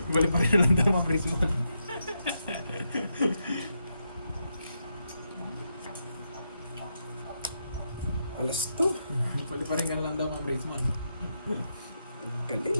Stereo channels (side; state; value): both; inverted; correlation -0.83